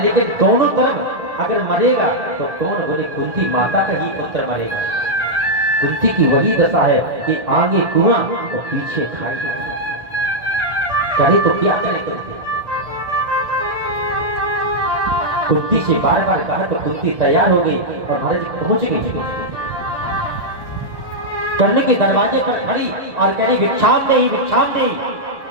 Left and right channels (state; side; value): late; left; 1.4 ms